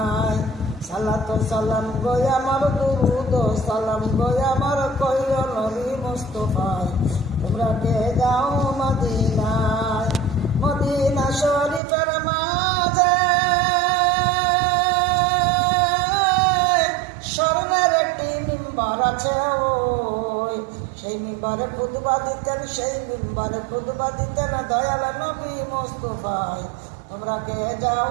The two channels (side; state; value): left; drops out; at 11.8 s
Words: সালাত সালাম গো আমার দুরুদ সালাম গো আমার কইও নবী মুস্তাফায় তোমরা কে যাও মদিনায় মদিনা শরীফের মাঝে স্বর্ণের একটি মিম্বার আছে ওই সেই মিম্বারে খুতবা দিতেন সেই মিম্বারে খুতবা দিতেন দয়াল নবী মুস্তাফায় তোমরা কে